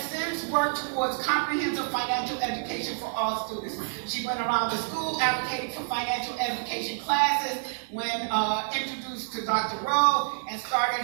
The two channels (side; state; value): left; silent; digital silence